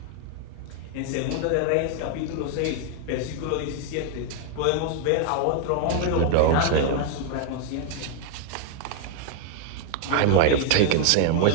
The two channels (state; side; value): different; both; correlation 0.00